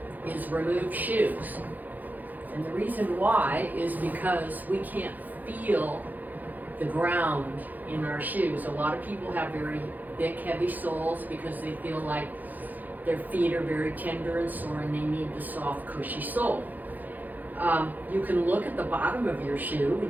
is remove shoes. And the reason why is because we can't feel the ground in our shoes. A lot of people have very thick, heavy soles because they feel like their feet are very tender and sore and they need the soft, cushy sole. You can look at the bottom of your shoe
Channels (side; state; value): left; late; 0.083 ms